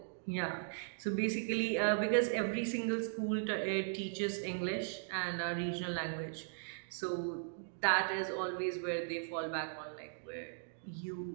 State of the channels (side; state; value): left; silent; digital silence